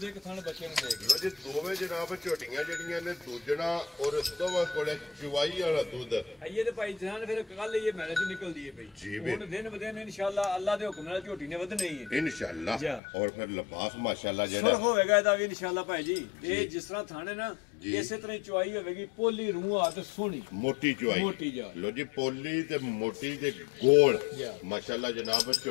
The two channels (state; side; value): drops out; right; at 13.0 s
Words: ਹੈ ਕਿਸਾਨ ਬੱਚੇ ਨੂੰ ਦੇਗੀ ਲੋ ਜੀ ਦੋਵੇਂ ਜਨਾਬ ਝੋਟੀਆਂ ਜਿਹੜੀਆਂ ਨੇ ਦੂਜਣਾ ਔਰ ਦੋਵਾਂ ਕੋਲੇ ਚੁਵਾਈ ਵਾਲਾ ਦੁੱਧ ਇਹ ਤੇ ਭਾਈ ਜਾਨ ਫਿਰ ਕੱਲ ਇਹ ਮੈਲੇ ਤੋਂ ਨਿਕਲਦੀ ਹੈ ਭਾਈ ਹੁਣ ਦਿਨ ਬਦਿਨ ਇਨਸ਼ਾਅੱਲਾ ਅੱਲਾ ਦੇ ਹੁਕਮ ਨਾਲ ਝੋਟੀ ਨੇ ਵਧਣੀ ਹੈ ਇਨਸ਼ਾਅੱਲਾ ਔਰ ਫਿਰ ਲਿਬਾਸ ਮਾਸ਼ਾਅੱਲਾ ਜਿਹੜਾ ਹੋਵੇਗਾ ਇਹਦਾ ਵੀ ਇਨਸ਼ਾਅੱਲਾ ਭਾਈ ਜੀ ਇਹ ਜਿਸ ਤਰ੍ਹਾਂ ਥਾਣੇ ਨਾ ਇਸੇ ਤਰ੍ਹਾਂ ਚੁਆਈ ਹੋਵੇਗੀ ਪੋਲੀ ਰੂਹ ਆ ਤੇ ਸੋਹਣੀ ਮੋਟੀ ਚੁਆਈ ਮੋਟੀ ਜਾ ਲੋ ਜੀ ਪੋਲੀ ਤੇ ਮੋਟੀ ਤੇ ਗੋਲ ਮਾਸ਼ਾਅੱਲਾ ਜਨਾਬ